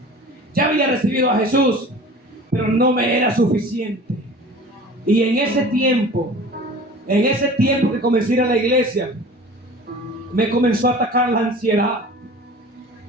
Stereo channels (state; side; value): normal; both; correlation 0.41